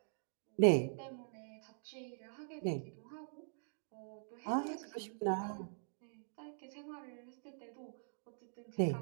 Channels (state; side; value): silent; left; digital silence